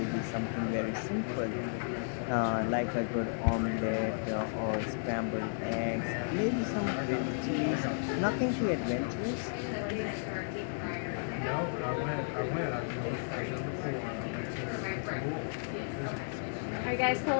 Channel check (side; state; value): right; silent; digital silence